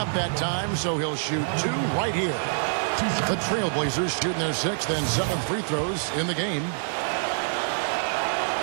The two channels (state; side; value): silent; left; digital silence